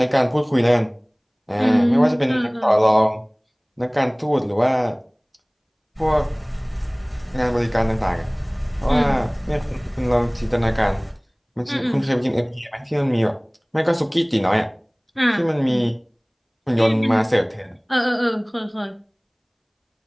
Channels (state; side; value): identical; both; correlation 1.00